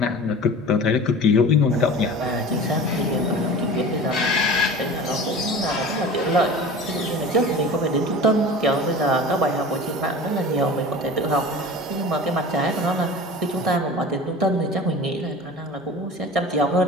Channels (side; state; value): both; normal; correlation 0.37